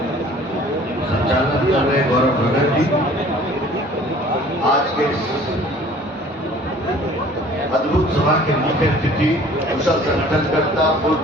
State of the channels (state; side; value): normal; both; correlation 0.51